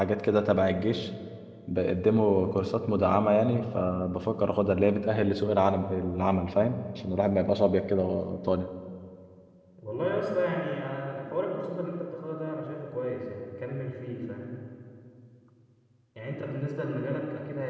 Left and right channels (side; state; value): both; identical; correlation 1.00